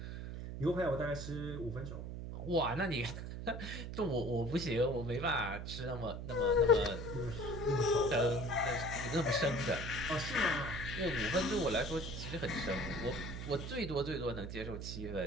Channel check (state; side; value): noise; right; hum, 7 dB below the sound